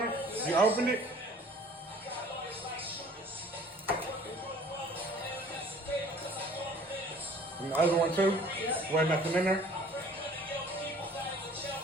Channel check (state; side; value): normal; both; correlation 0.52